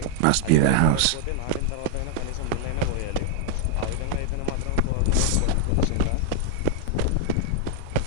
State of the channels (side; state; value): both; different; correlation 0.00